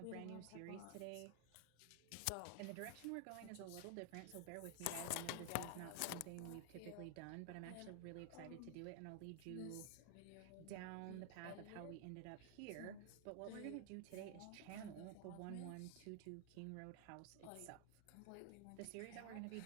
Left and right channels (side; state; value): both; different; correlation 0.00